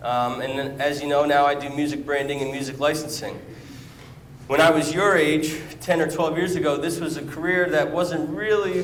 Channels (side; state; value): both; identical; correlation 1.00